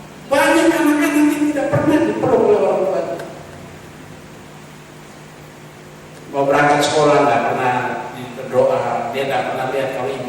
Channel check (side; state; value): both; identical; correlation 1.00